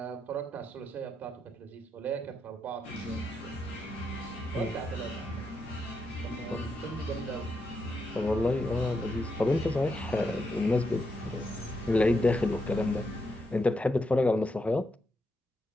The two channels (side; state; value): both; normal; correlation 0.83